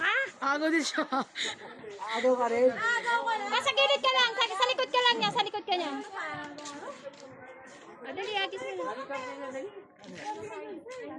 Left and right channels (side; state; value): both; identical; correlation 1.00